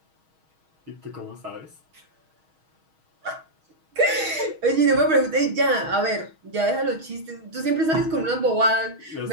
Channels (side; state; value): left; late; 6.3 ms